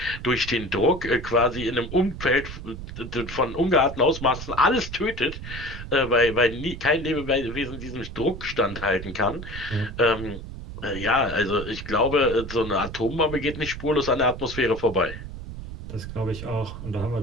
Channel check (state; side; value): noise; right; rumble, 10 dB below the sound